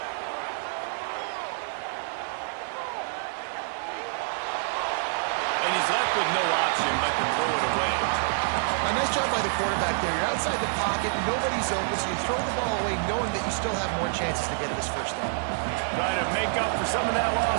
And he's left with no option but to throw it away. A nice job by the quarterback there. You're outside the pocket, nobody's open, so you throw the ball away knowing that you still have more chances to get this first down. Trying to make up for some of that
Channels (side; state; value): left; silent; 60 dB below the other